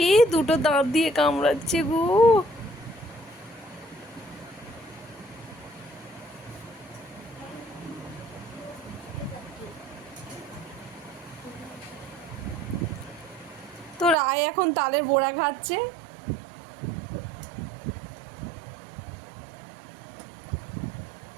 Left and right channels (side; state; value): left; drops out; at 14.2 s